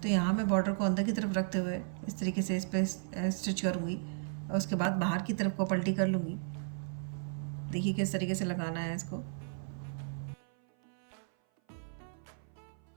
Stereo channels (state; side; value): silent; left; 55 dB below the other